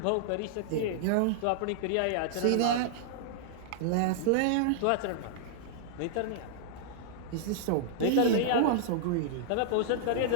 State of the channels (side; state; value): both; different; correlation -0.01